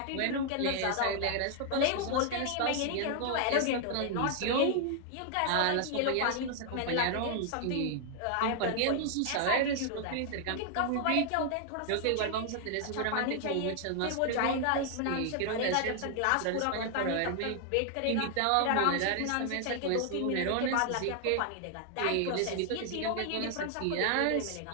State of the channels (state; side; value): different; both; correlation 0.00